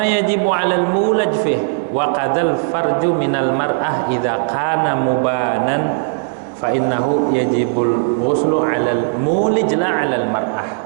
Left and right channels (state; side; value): silent; left; digital silence